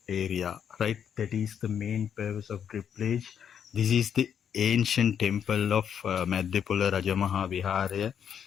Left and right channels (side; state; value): right; quieter; 8.3 dB